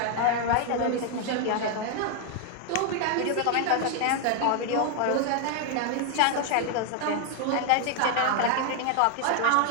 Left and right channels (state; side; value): different; both; correlation 0.01